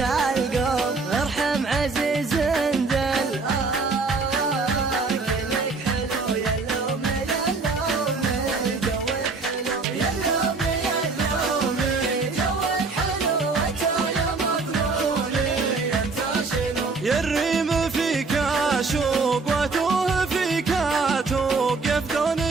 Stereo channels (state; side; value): quieter; left; 4.0 dB